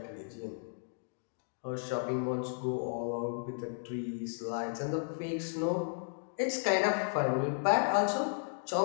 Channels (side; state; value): right; silent; digital silence